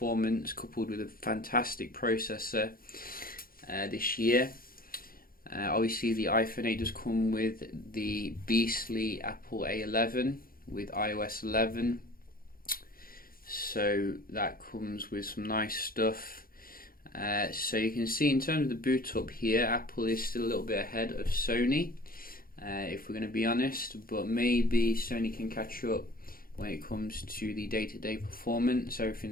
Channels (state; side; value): late; right; 0.42 ms